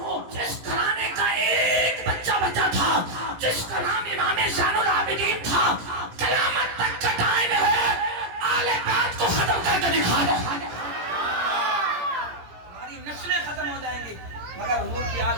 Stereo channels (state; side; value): late; left; 17 ms